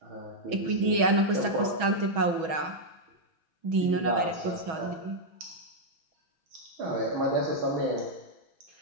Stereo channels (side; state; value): left; late; 6.2 ms